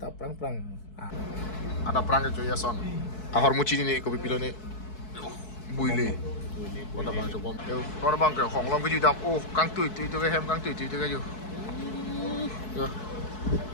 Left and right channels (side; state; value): right; late; 4.6 ms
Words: prang ada prang ke ya son ahor muci ni ko pipilo ni buile Kota bang coba yo kota bang ke hong long ke ju dam oh kang tui ke hem kang tui ke ju Yo.